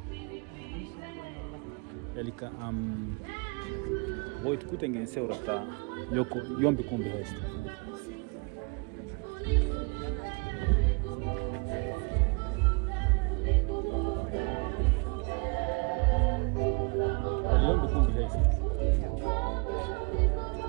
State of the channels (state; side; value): quieter; left; 32.3 dB